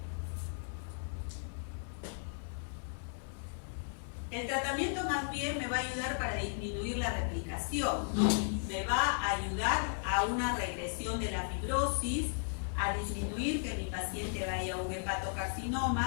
El tratamiento más bien me va a ayudar para disminuir la replicación, ¿no? Me va a ayudar a una regresión de la fibrosis, a disminuir que mi paciente vaya a un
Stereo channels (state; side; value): silent; right; 54 dB below the other